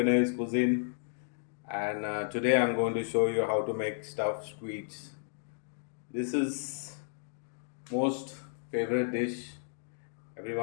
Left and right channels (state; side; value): silent; right; digital silence